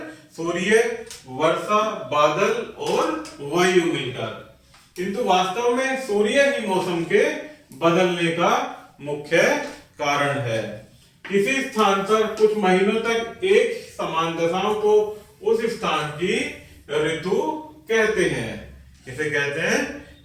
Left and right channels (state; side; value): identical; both; correlation 1.00